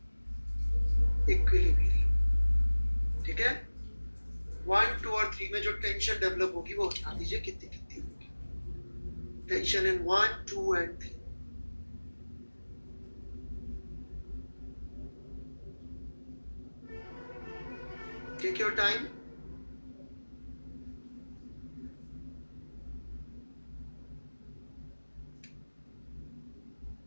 body में जो टेंशन डेवलप होगी वो बता दीजिए कितनी कितनी होगी। Tension in 1, 2 and 3। Take your time.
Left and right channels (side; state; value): both; inverted; correlation -1.00